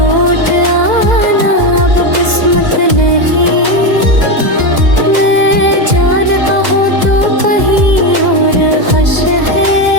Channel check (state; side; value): late; left; 2.0 ms